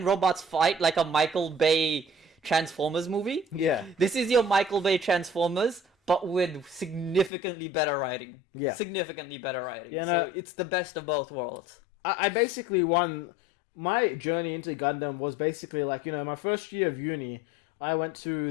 robots fight like a Michael Bay Transformers movie, Yeah. this is your Michael Bay Transformers, but with significantly better writing. Yeah. Significantly better writing. Yeah, So no- it's the best of both worlds. I basically my journey into Gundam was basically like, my first year of uni, I went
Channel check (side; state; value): right; drops out; at 7.3 s